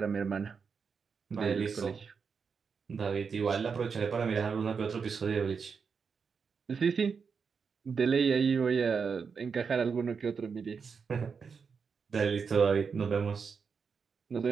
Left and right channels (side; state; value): left; quieter; 5.8 dB